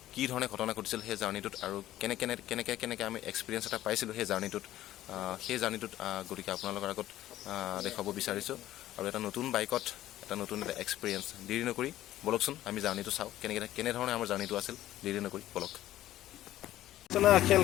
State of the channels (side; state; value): right; quieter; 13.9 dB